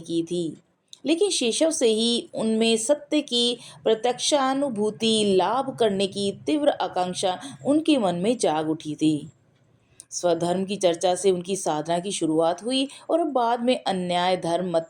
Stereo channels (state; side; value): identical; both; correlation 1.00